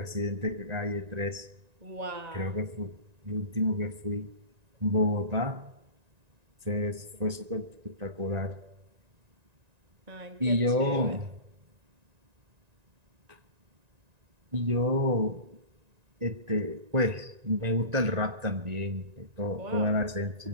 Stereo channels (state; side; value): late; left; 1.9 ms